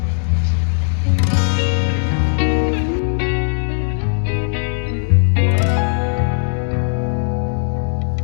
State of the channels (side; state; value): right; silent; 67 dB below the other